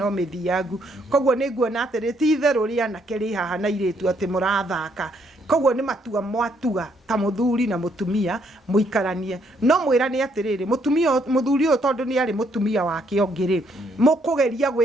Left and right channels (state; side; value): normal; both; correlation 0.71